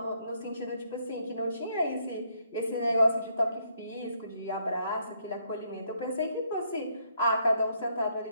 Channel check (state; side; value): inverted; both; correlation -0.72